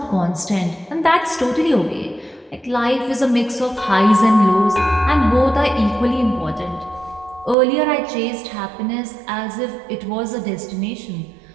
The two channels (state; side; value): drops out; left; at 7.6 s